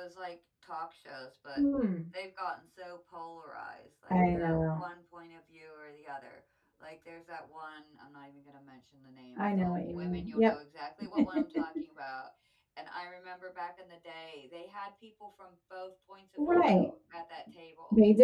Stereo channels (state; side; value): identical; both; correlation 1.00